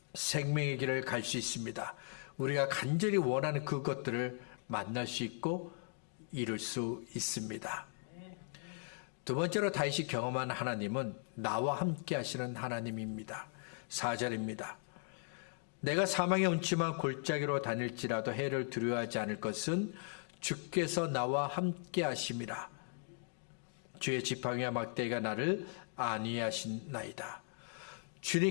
생명의 길을 갈 수 있습니다. 우리가 간절히 원하는 그것들을 만날 수 있고 이룰 수 있습니다. 두 번째로 다윗이 경험한 하나님은 나와 함께 하시는 하나님입니다. 4절입니다. 내가 사망의 음침한 골짜기로 다닐지라도 해를 두려워하지 않을 것은 주께서 나와 함께 하심이라. 주의 지팡이와 막대기가 나를 안위하신나이다.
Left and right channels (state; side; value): silent; right; 52 dB below the other